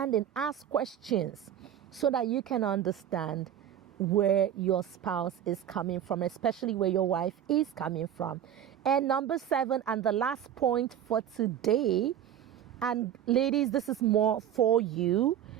ask questions so that you can understand where your spouse is coming from, especially where your wife is coming from. And number 7, and the last point for today, and ladies, this is more for you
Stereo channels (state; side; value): quieter; left; 10.1 dB